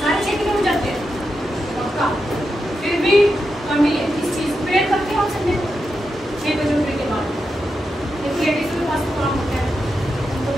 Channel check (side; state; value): both; normal; correlation 0.87